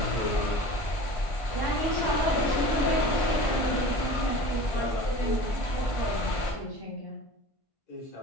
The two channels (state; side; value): late; right; 1.5 ms